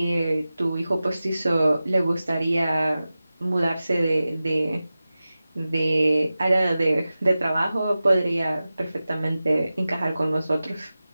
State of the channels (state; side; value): inverted; both; correlation -0.95